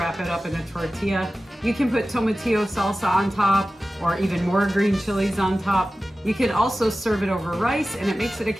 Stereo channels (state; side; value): normal; both; correlation 0.95